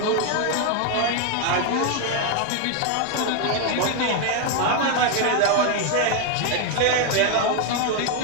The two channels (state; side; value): different; both; correlation 0.01